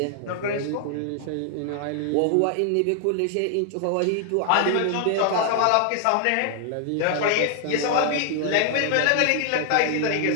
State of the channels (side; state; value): both; different; correlation 0.00